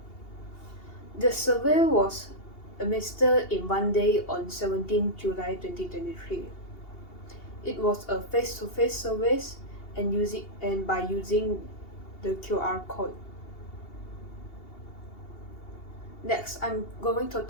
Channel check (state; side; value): late; right; 2.8 ms